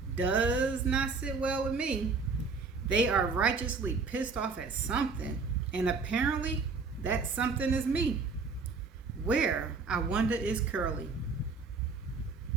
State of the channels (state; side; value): quieter; left; 4.5 dB